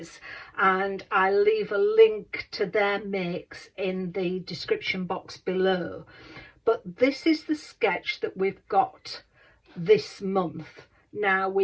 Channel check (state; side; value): identical; both; correlation 1.00